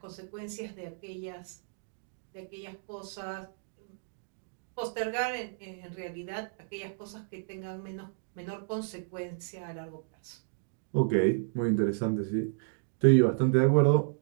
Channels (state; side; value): silent; left; digital silence